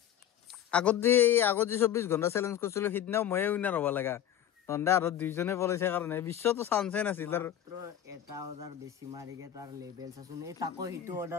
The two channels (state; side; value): quieter; right; 10.6 dB